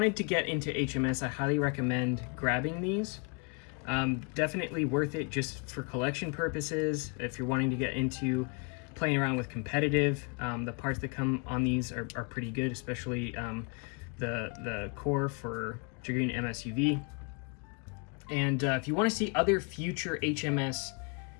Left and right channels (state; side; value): quieter; right; 34.5 dB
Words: to get into HMS, I highly recommend grabbing these. Definitely worth it just for collection purposes. If you're wanting to get into playing around with competitive, the parts that come on these are pretty good, especially the core for Dragoon MSUV. And if you want to see other future HMS